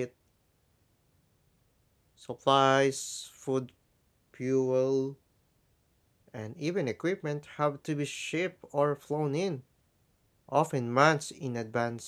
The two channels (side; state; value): both; identical; correlation 1.00